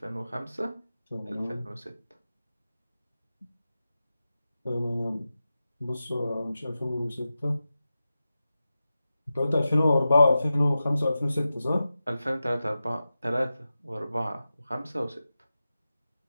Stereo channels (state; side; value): inverted; both; correlation -0.93